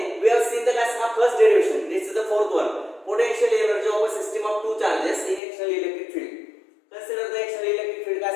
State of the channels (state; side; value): drops out; right; at 5.4 s